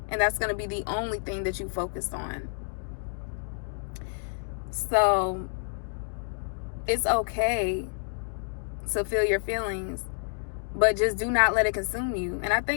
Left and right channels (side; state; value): right; silent; 59 dB below the other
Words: and that's going to be the only thing that you focus on. So it's okay to feel your feelings, but just do not let it consume you. And I